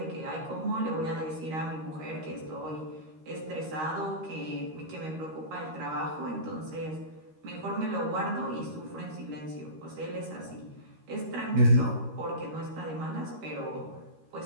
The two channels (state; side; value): late; left; 13 ms